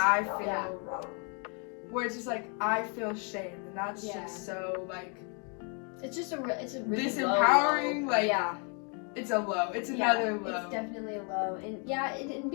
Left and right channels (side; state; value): right; quieter; 37.4 dB